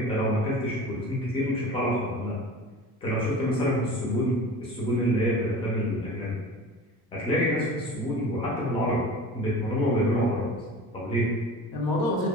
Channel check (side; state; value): both; normal; correlation 0.37